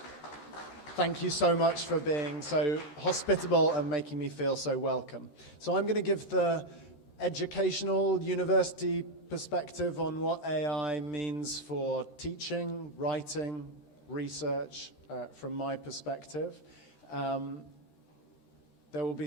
Thank you so much for being so hospitable and making me feel so welcome. So I'm going to give the educational university perspective on what AI means for teaching, writing, research from my perspective. There will be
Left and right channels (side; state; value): right; late; 13 ms